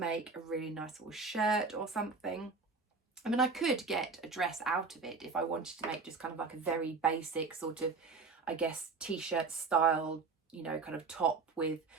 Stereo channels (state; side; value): quieter; left; 4.3 dB